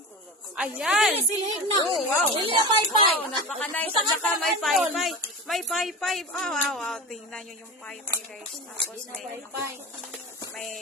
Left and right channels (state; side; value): normal; both; correlation 0.28